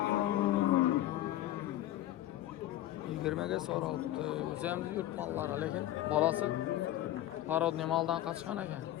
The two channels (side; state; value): right; quieter; 13.8 dB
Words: Yigirmege soraldı. O'zimiz yurt mallari, lekin bolasi parodniy maldan qochgan ekan.